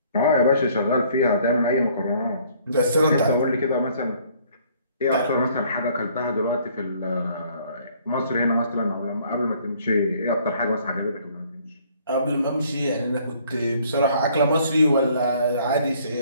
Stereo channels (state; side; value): inverted; both; correlation -0.60